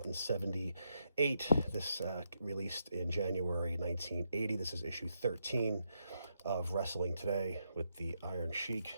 in 78. This released in January 1980. This is issue 13 of Wrestling Today with the Iron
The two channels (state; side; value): inverted; both; correlation -0.80